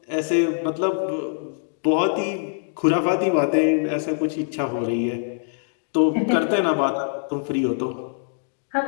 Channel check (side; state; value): right; silent; digital silence